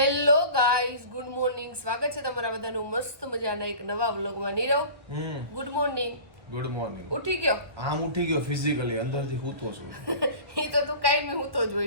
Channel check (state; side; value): late; left; 1.1 ms